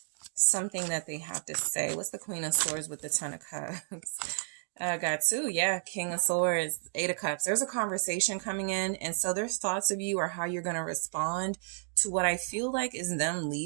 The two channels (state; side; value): silent; left; digital silence